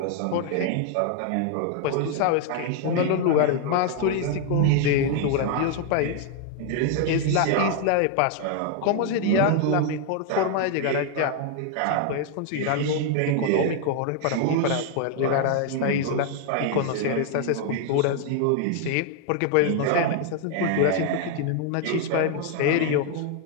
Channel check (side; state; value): both; different; correlation 0.00